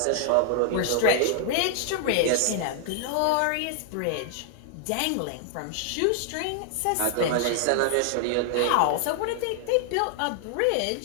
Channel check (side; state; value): both; different; correlation 0.00